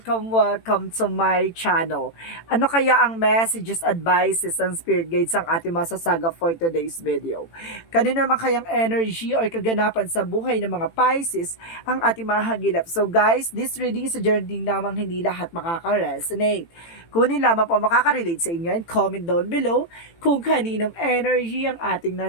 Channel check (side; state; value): right; late; 18 ms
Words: to my channel. Ano kaya ang messages, advices, and spirit guides ang ating masasaga for today's video? Kanino naman kayang energy or kaganapan sa buhay ng mga Pisces ang ating mahagilap? So guys, this reading is a journey namang hindi lahat makaka-resonate. Kunin lamang po makaka-relate sa inyo and comment down below kung kaninong energy ang ating